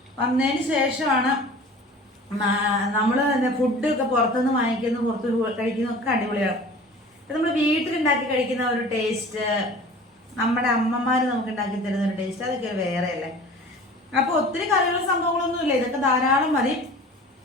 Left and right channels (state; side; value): normal; both; correlation 0.42